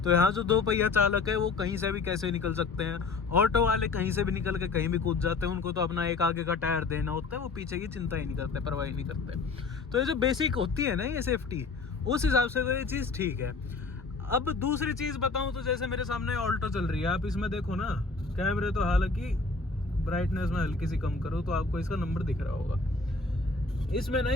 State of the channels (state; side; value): quieter; right; 4.2 dB